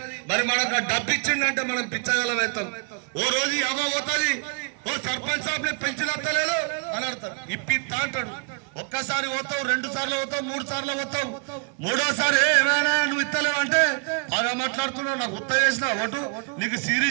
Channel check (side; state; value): left; quieter; 35.4 dB